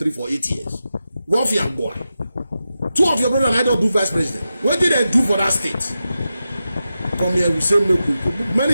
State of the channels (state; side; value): inverted; both; correlation -0.90